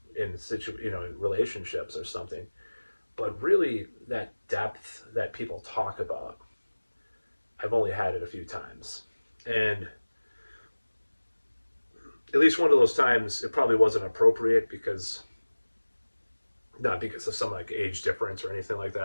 in relationships or something. But really, that depth that people talk about, I've only had it a few times. And at least one of those times, it probably wasn't appropriate because, not because of some like age difference or anything like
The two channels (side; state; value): both; inverted; correlation -1.00